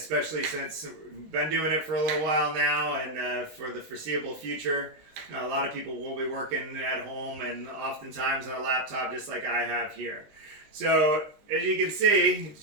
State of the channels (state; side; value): late; left; 19 ms